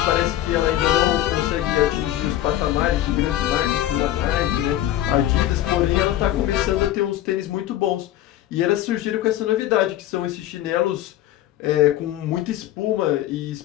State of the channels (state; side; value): quieter; right; 13.3 dB